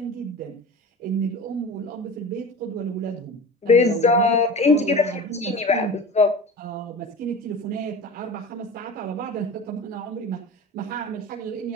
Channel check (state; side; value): normal; both; correlation 0.34